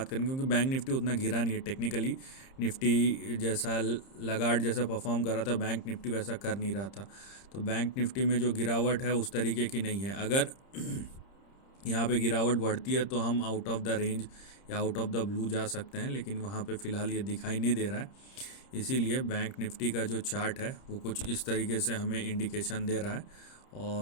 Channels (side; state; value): right; late; 30 ms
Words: करेंगे, क्योंकि बैंक निफ्टी उतना गिरा नहीं है टेक्निकली। निफ्टी जैसा लगार्ड जैसा परफॉर्म कर रहा था, बैंक निफ्टी वैसा कर नहीं रहा था। तो बैंक निफ्टी में जो गिरावट है उस तरीके की नहीं है। अगर यहाँ पे गिरावट बढ़ती है तो हम आउट ऑफ द रेंज या आउट ऑफ द ब्लू जा सकते हैं, लेकिन वहाँ पे फ़िलहाल ये दिखाई नहीं दे रहा है। इसीलिए बैंक निफ्टी का जो चार्ट है वो कुछ इस तरीके से हमें इंडिकेशन दे रहा है